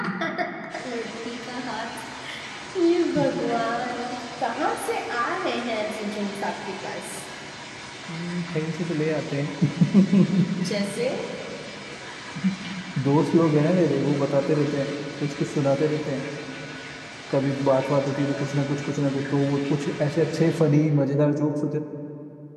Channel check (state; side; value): identical; both; correlation 1.00